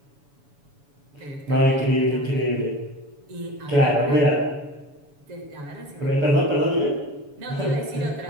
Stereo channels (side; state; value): left; late; 7.1 ms